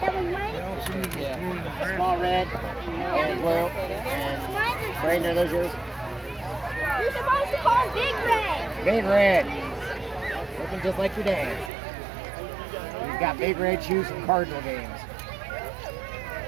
was mine. Yeah. Small red. And blue. And Brayden, are those yours? You're supposed to call Big Red. Big red. Looking just like your dad. He's got big red shoes from Cardinal games.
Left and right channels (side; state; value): left; drops out; at 11.7 s